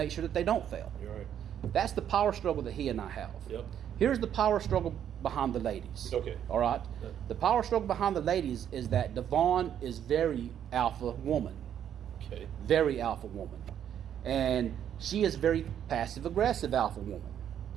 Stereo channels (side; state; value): left; quieter; 9.6 dB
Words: sure that they don't fail. you're right. That's the power struggle that he and I have. Yep. Here's the power struggle behind the ladies. Okay. All right. Yeah. The power struggle behind the ladies is that Devon is very alpha woman, Okay. very alpha woman, and she is very passive aggressive alpha woman.